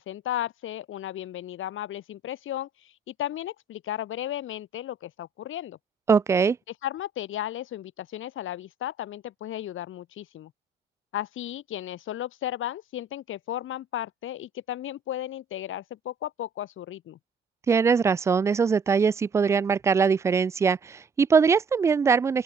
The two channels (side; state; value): left; quieter; 3.3 dB